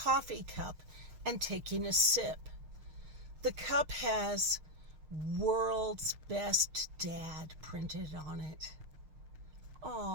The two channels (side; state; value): left; late; 6.5 ms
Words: cup and taking a sip. The cup has "World's Best Dad" printed on it.